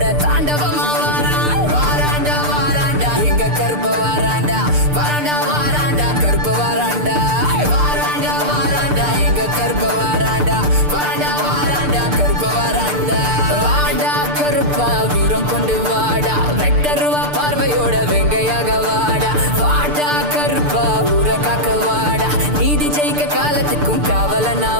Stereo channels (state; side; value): late; left; 6.7 ms